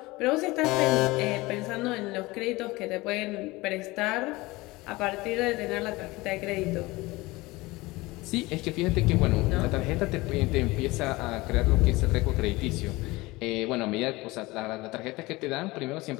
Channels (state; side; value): quieter; right; 21.3 dB